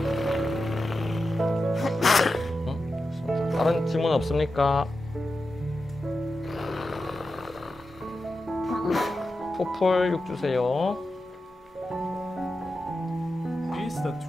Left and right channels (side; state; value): both; normal; correlation 0.91